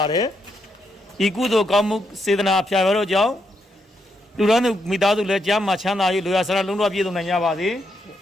ါတယ်ဤကုသိုလ်ကောင်းမှုစေတနာဖျာရတော့ကြောင့်လူဒန်းသူမိသားစုလည်းကြားမှာချမ်းသာ၍လူရဆရာလုံးတော်ပြည့်စုံနိုင်ကြပါစေ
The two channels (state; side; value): normal; both; correlation 0.79